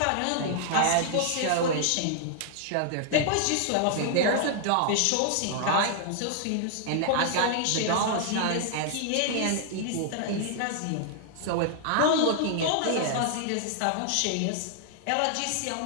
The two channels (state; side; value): different; both; correlation -0.01